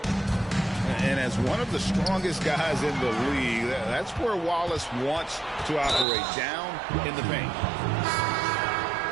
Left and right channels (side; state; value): left; drops out; at 6.1 s